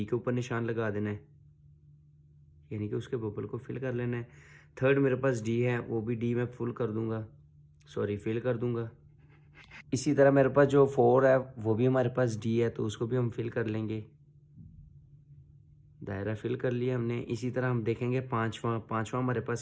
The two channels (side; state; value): both; identical; correlation 1.00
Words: के ऊपर निशान लगा देना है, यानी कि उसके बबल को फिल कर लेना है। थर्ड मेरे पास डी है, वो भी डी मैं फिल कर दूंगा। इसी तरह मेरे पास जो 4 है वो भी हमारे पास डी है, तो उसको भी हम फिल कर लेंगे। दायरा फिल कर लिया हमने। इसी तरह हम देखेंगे पांचवा हमारे